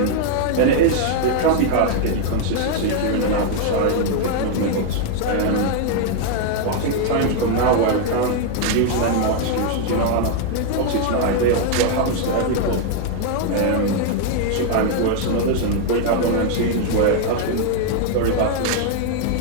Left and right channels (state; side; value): different; both; correlation 0.00